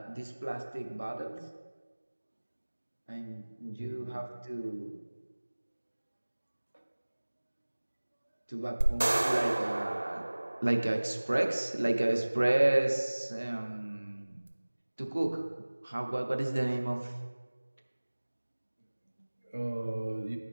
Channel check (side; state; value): both; inverted; correlation -1.00